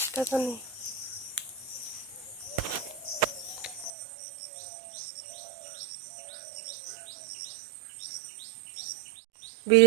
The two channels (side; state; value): left; drops out; at 3.9 s